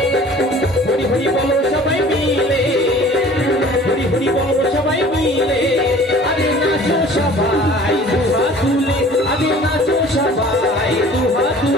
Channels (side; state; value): both; normal; correlation 0.48